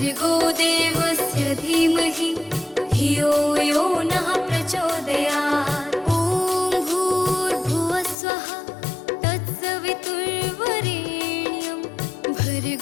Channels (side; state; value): right; drops out; at 8.2 s